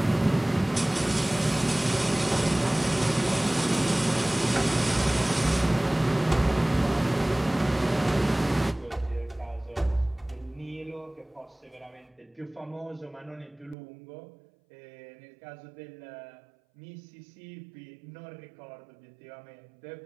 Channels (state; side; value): drops out; left; at 13.8 s